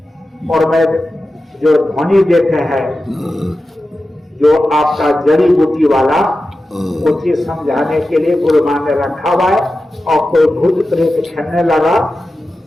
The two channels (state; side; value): normal; both; correlation 0.93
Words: और मैं जो ध्वनि देते हैं जो आपका जड़ी बूटी वाला वो चीज समझाने के लिए गुरु महाराज ने रखा हुआ है। और कोई भूत प्रेत खेलने लगा